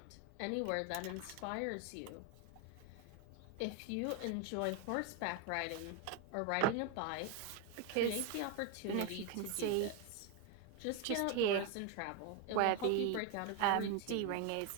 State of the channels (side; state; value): both; different; correlation 0.01